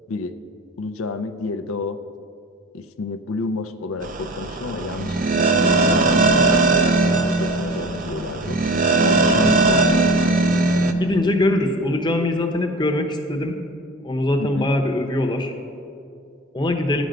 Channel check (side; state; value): both; normal; correlation 0.36